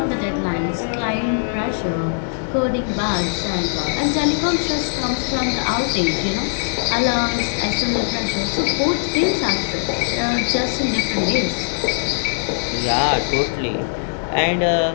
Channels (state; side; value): silent; right; 65 dB below the other